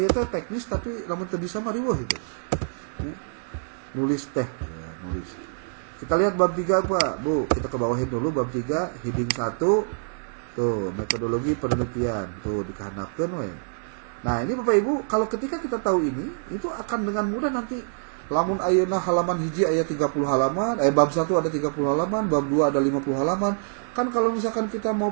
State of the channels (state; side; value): silent; left; digital silence